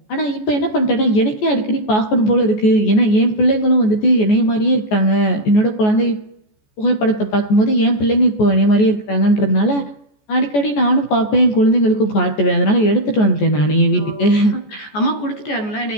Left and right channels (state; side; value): late; right; 14 ms